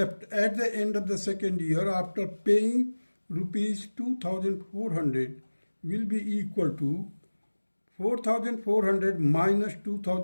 at the end of the second year after paying rupees 2,400 will be equal to 4,400 minus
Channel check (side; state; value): both; inverted; correlation -1.00